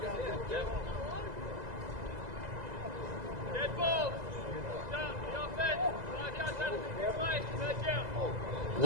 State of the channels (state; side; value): late; left; 2.0 ms